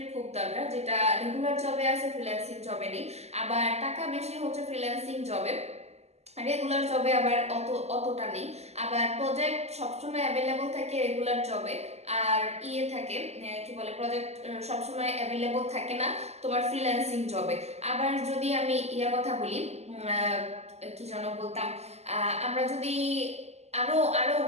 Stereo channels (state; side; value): late; left; 0.31 ms